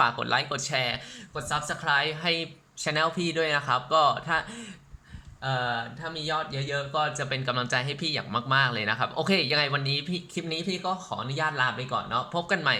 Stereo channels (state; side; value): identical; both; correlation 1.00